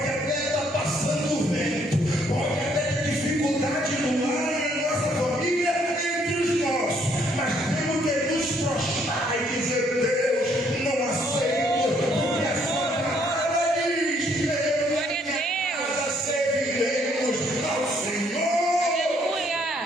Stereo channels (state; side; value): normal; both; correlation 0.67